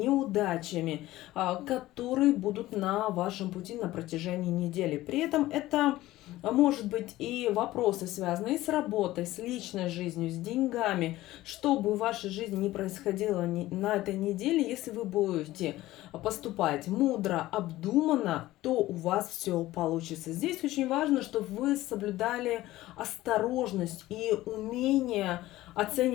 которые будут на вашем пути на протяжении недели. При этом это может быть и вопросы, связанные с работой, с личной жизнью, с деньгами. Что бы в вашей жизни ни происходило на этой неделе, если вы будете поступать мудро, обдуманно, то у вас все получится. Здесь очень важно, чтобы вы соблюдали осторожность и умение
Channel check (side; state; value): right; quieter; 16.5 dB